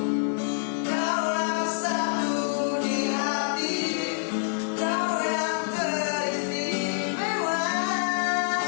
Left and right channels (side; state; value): right; silent; digital silence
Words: Kaulah satu di hati, kau yang teristimewa.